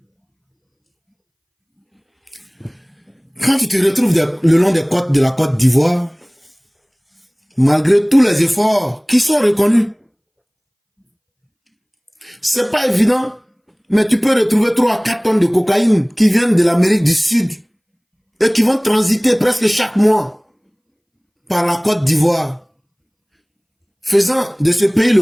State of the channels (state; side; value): identical; both; correlation 1.00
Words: Quand tu te retrouves le long des côtes de la Côte d'Ivoire, malgré tous les efforts qui sont reconnus, c'est pas évident, mais tu peux retrouver 3 à 4 tonnes de cocaïne qui viennent de l'Amérique du Sud et qui vont transiter presque chaque mois par la Côte d'Ivoire, faisant de ce pays